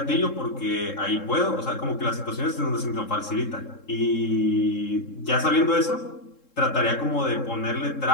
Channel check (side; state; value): right; late; 3.7 ms